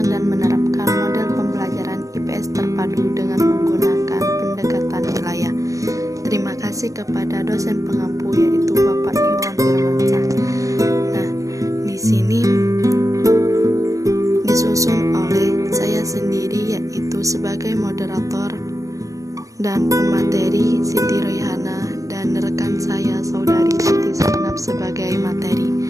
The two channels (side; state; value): left; late; 0.16 ms